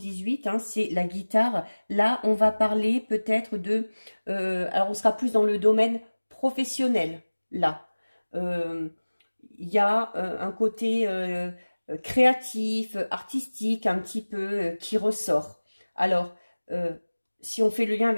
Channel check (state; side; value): inverted; both; correlation -1.00